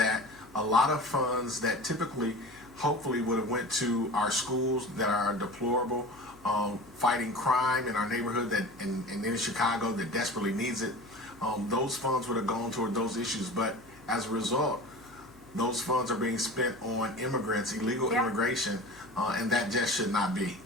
a lot of funds that typically, hopefully, would have went to our schools that are deplorable, fighting crime in our neighborhood and in Chicago that desperately needs it, those funds would have gone toward those issues. But as a result, those funds are being spent on immigrants, illegal immigration, and that just should not be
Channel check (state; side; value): noise; left; hum, 24 dB below the sound